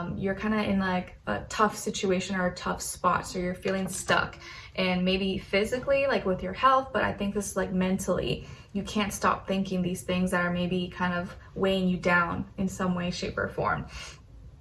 You're kind of in like a tough situation or a tough spot, so you're feeling stuck. And maybe physically, like with your health, but I think this is like mentally. You can't stop thinking these things that are maybe kind of weighing you down in some way, shape, or form.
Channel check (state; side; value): identical; both; correlation 1.00